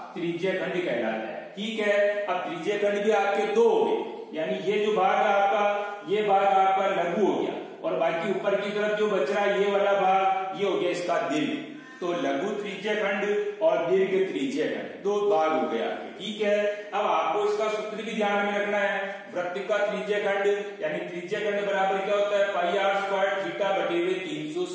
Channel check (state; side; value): identical; both; correlation 1.00